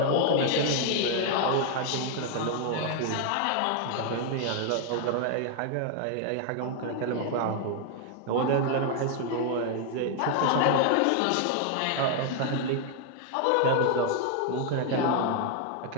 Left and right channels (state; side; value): different; both; correlation 0.00